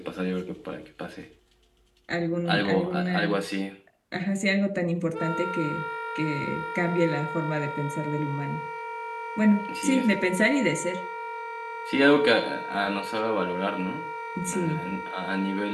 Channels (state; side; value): identical; both; correlation 1.00